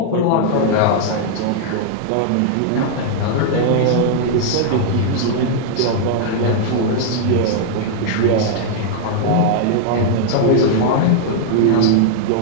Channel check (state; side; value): different; both; correlation -0.01